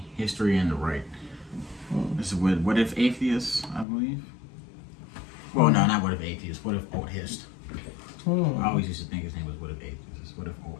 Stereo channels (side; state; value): right; drops out; at 3.9 s